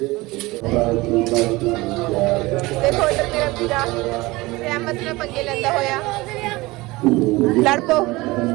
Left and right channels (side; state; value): left; quieter; 21.3 dB